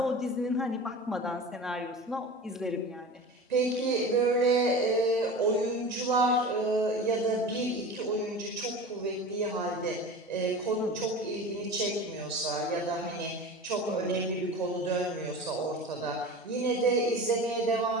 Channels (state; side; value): normal; both; correlation 0.33